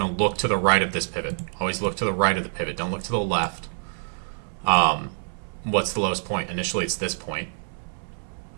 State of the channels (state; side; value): silent; left; 61 dB below the other